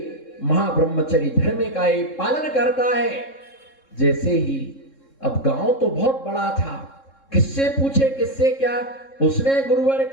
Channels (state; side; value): late; right; 3.7 ms